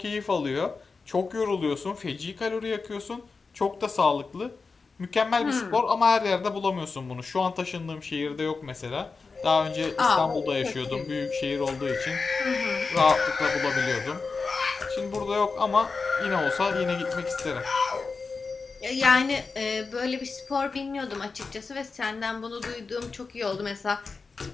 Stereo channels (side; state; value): right; quieter; 4.5 dB